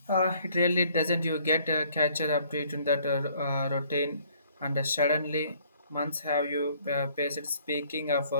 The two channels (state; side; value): inverted; both; correlation -0.62